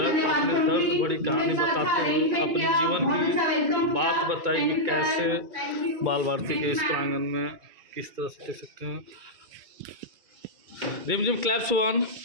बड़ी कहानी बताते हुए अपने जीवन की बात बताई कि कैसे बाल भारती के इस प्रांगण में किस तरह से देख सकते हैं। रिमझिम क्लैप्स 1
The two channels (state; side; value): late; left; 2.2 ms